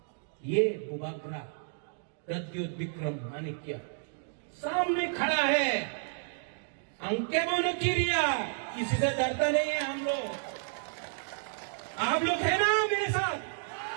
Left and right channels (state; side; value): silent; left; digital silence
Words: ये बुबागरा प्रद्युत विक्रम माणिक्य सामने खड़ा है, अंके मानो किरिया, किसी से डरता नहीं है हम लोग। आप लोग है ना मेरे साथ?